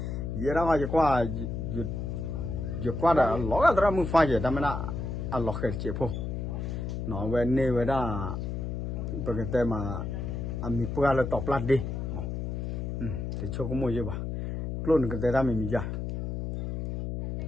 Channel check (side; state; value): left; noise; hum, 4 dB below the sound